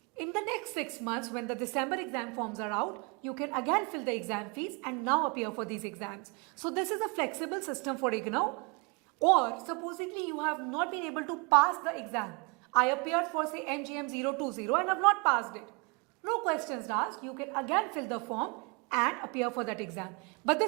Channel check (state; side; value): quieter; left; 31.2 dB